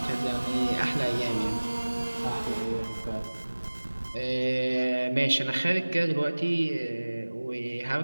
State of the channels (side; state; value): both; inverted; correlation -1.00